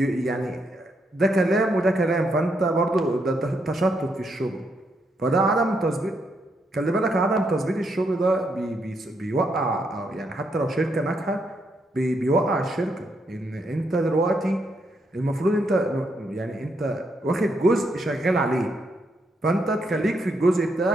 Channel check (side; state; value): both; normal; correlation 0.78